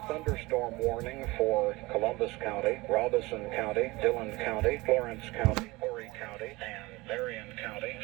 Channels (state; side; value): quieter; left; 22.0 dB